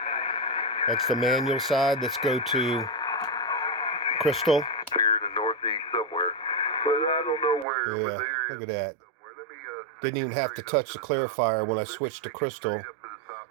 That's the manual side. Let's go to Crystal. Here in the northeast somewhere, but I don't know where. Yeah, look at that. Didn't even have to touch the clarifier when I switched to Crystal.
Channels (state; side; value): drops out; left; at 7.7 s